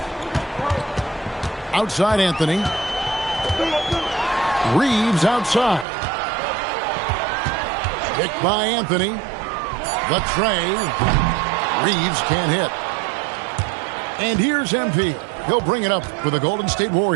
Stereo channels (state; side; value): drops out; left; at 5.9 s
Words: Outside Anthony. Reeves outside. Picked by Anthony. The tray. Reeves can't hit. And here's MP. He'll bring it up for the Golden State